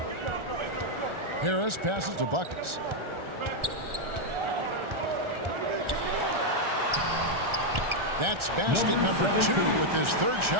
Harris passes to Buckets. That's basket number 2 with his third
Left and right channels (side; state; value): left; late; 1.4 ms